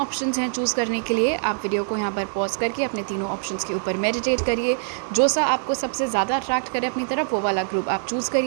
हैं चूज़ करने के लिए। आप वीडियो को यहाँ पर पॉज करके अपने तीनों ऑप्शंस के ऊपर मेडिटेट करिए। जो सा आपको सबसे ज़्यादा अट्रैक्ट करे अपनी तरफ, वो वाला ग्रुप आप चूज़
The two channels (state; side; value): silent; left; digital silence